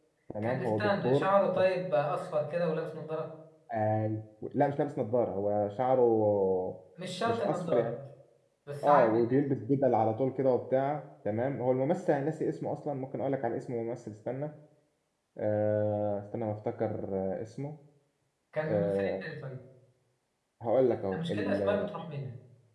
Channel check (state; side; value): identical; both; correlation 1.00